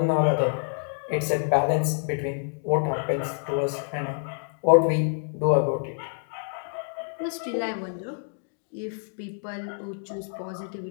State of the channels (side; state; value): right; silent; digital silence